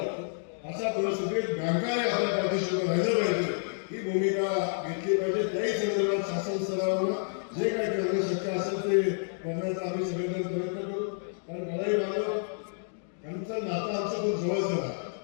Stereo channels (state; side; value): silent; right; digital silence